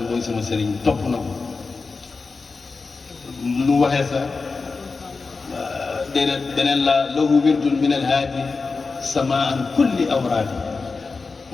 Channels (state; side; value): quieter; right; 4.3 dB